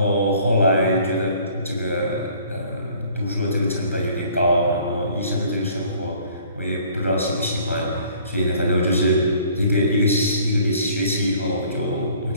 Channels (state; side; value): inverted; both; correlation -0.55